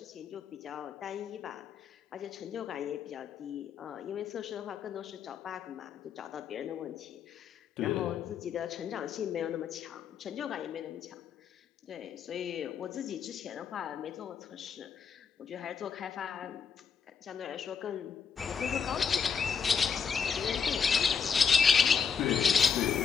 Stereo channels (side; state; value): right; quieter; 6.5 dB